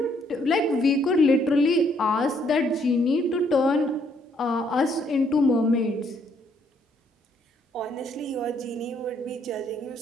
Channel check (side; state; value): both; normal; correlation 0.69